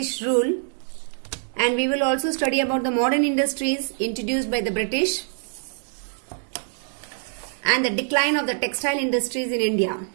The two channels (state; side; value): silent; left; digital silence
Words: rule, and we will also study about the modern industries introduced by the British and the decline of the textile industries in India.